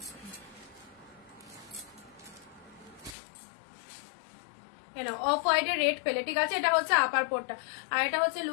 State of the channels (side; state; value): right; drops out; at 3.2 s